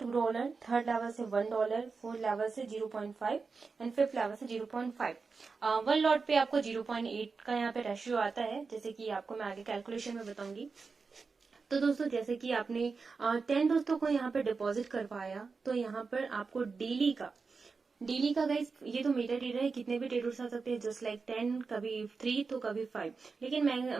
थर्ड लेवल से $1, फोर्थ लेवल से 0.5 एंड फिफ्थ लेवल से 0.5। वन लॉट पे आपको 0.8 का यहाँ पे रेशियो आता है, जैसे कि आपको मैं आगे कैलकुलेशन में बताऊंगी। तो दोस्तों जैसे कि आपने 10 दोस्तों को यहाँ पे डिपॉजिट करवाया, तो यहाँ पर आपको डेली का गाइस, ये तो मेटा ट्रेडर है, कितने भी ट्रेडर्स आ सकते हैं, जस्ट लाइक 10, कभी 3 तो कभी 5। लेकिन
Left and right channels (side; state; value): left; quieter; 4.7 dB